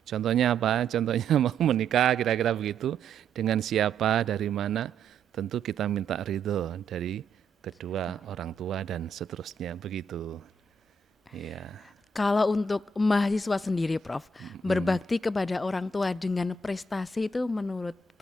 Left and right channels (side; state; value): left; quieter; 3.5 dB